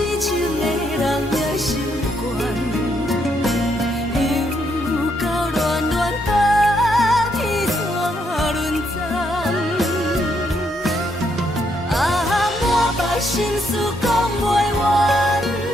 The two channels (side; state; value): both; normal; correlation 0.75